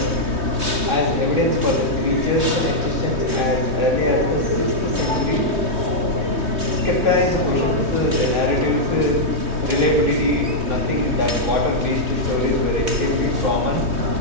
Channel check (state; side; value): late; left; 3.2 ms